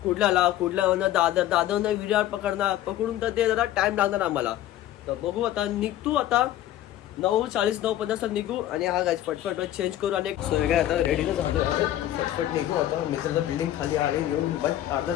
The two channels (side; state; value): right; quieter; 13.1 dB